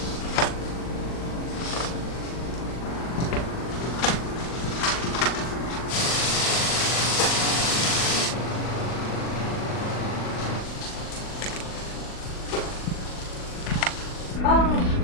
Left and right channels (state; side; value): late; right; 40 ms